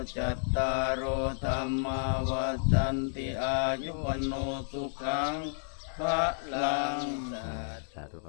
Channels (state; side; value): silent; right; digital silence